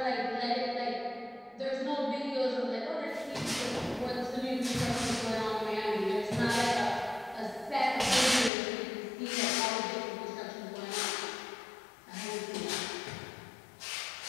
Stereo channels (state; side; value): drops out; right; at 8.5 s